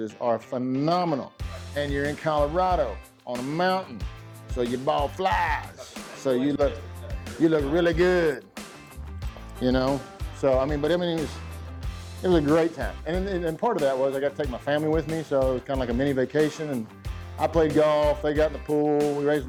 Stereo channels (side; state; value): both; identical; correlation 1.00